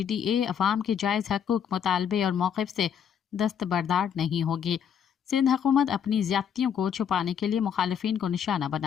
अवाम के जायज़ हकूक, मुतालबे और मौक़िफ़ से दस्तबरदार नहीं होगी। सिंध हुकूमत अपनी ज़्यादतियों को छुपाने के लिए मुखालिफिन को निशाना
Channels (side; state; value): right; quieter; 8.2 dB